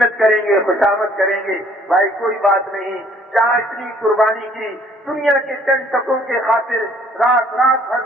کریں گے، خوشامد کریں گے، بھائی کوئی بات نہیں، جہاں اتنی قربانی کی، دنیا کے چند ٹکوں کے خاطر رات بھر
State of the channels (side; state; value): both; normal; correlation 0.60